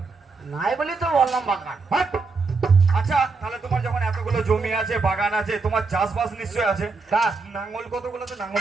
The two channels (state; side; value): quieter; left; 4.2 dB